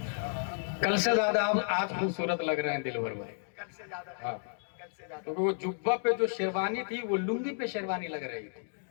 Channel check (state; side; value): silent; right; digital silence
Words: کل سے زیادہ آپ آج خوبصورت لگ رہے ہیں دلبر بھائی. کل سے زیادہ, ہاں, کل سے زیادہ. کیونکہ وہ جبہ پہ جو شیروانی تھی وہ لنگی پہ شیروانی لگ رہی تھی,